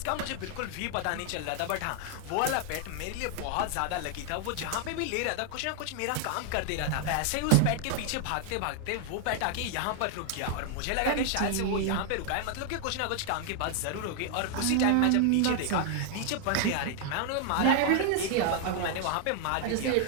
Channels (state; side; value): different; both; correlation 0.00